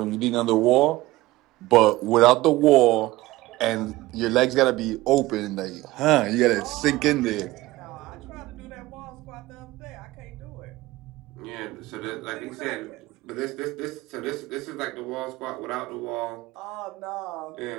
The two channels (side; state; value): left; quieter; 18.4 dB